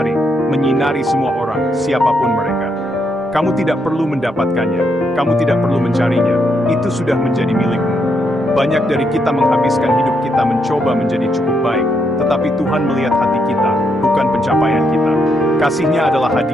menyinari semua orang, siapapun mereka. Kamu tidak perlu mendapatkannya, kamu tidak perlu mencarinya, itu sudah menjadi milikmu. Banyak dari kita menghabiskan hidup kita mencoba menjadi cukup baik, tetapi Tuhan melihat hati kita, bukan pencapaian kita. Kasih-Nya adalah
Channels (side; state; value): both; normal; correlation 0.78